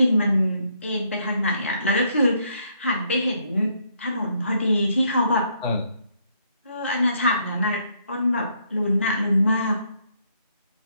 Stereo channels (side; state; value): both; inverted; correlation -0.71